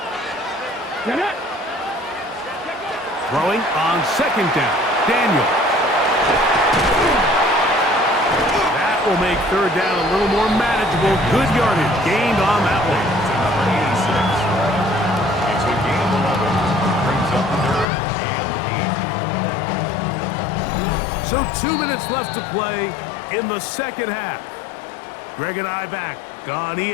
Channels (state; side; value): drops out; right; at 17.9 s